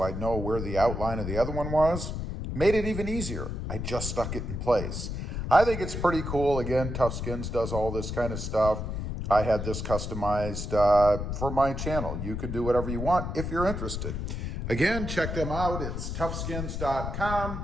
I know where the outline of the other one was. Made it even easier. I just stuck it in place. I think it's pretty cool. Again, Tough Skins does all this kind of stuff. I had this customized for my channel. You could do whatever you want if you're interested. Again, check them out. It's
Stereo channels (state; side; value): noise; left; rumble, 4 dB below the sound